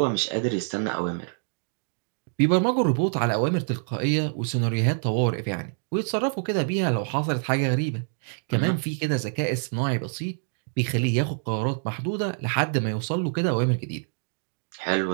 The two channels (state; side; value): silent; left; digital silence